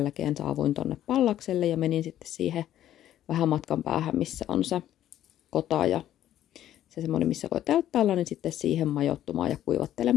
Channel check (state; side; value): quieter; right; 12.0 dB